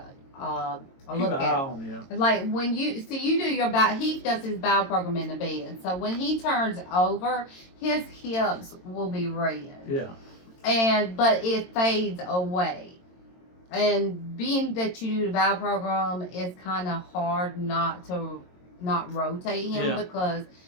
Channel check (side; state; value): right; late; 22 ms